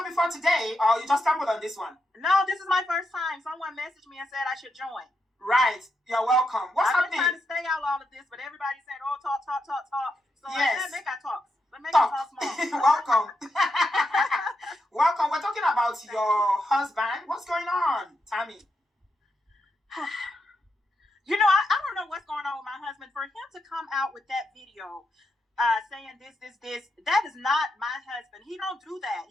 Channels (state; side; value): normal; both; correlation 0.83